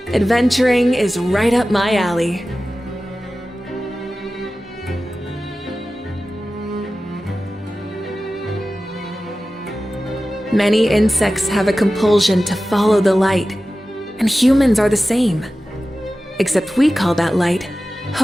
Adventuring is right up my alley. Many insects have a compulsion to follow the light, and humans are the same. Except we call that light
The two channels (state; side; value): normal; both; correlation 0.95